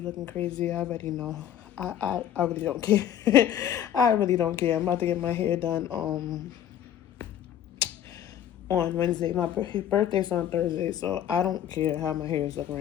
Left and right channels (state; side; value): quieter; right; 10.5 dB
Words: looking crazy. I already know. I really don't care. I really don't care. I'm about to get my hair done on Wednesday. My birthday's on Thursday, so I don't care how my hair is looking